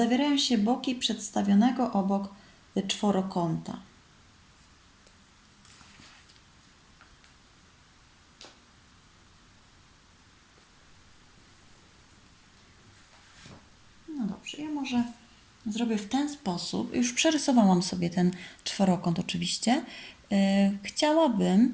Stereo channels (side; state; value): both; identical; correlation 1.00